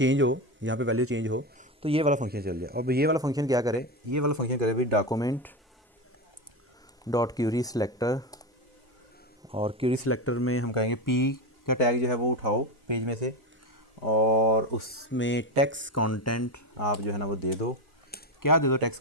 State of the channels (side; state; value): both; normal; correlation 0.17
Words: हो, यहाँ पे वैल्यू चेंज हो तो ये वाला फंक्शन चल जाए। अब ये वाला फंक्शन क्या करे, ये वाला फंक्शन करे भाई डॉक्यूमेंट डॉट क्यूरी सिलेक्टर, और क्यूरी सिलेक्टर में हम कहेंगे पी का टैग जो है वो उठाओ पेज में से, और उसमें टेक्स्ट कंटेंट आप जो है ना वो दे दो। क्या दे दो टेक्स्ट